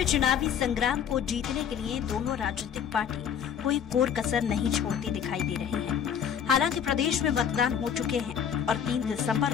चुनावी संग्राम को जीतने के लिए दोनों राजनीतिक पार्टी कोई कोर कसर नहीं छोड़ती दिखाई दे रही है। हालांकि प्रदेश में मतदान हो चुके हैं और 3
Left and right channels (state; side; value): quieter; right; 8.2 dB